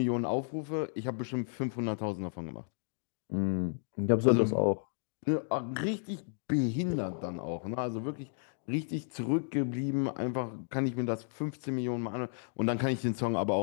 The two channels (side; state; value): right; silent; digital silence